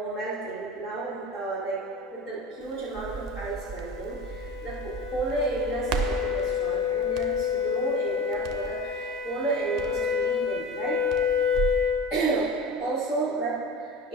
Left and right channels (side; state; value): both; normal; correlation 0.31